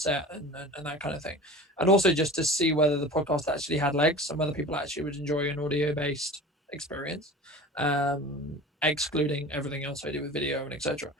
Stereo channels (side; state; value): both; normal; correlation 0.37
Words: and that kind of thing, and also just to see whether the podcast actually had legs and whether people actually would enjoy an audio based experience, excluding everything else I do with video and etc.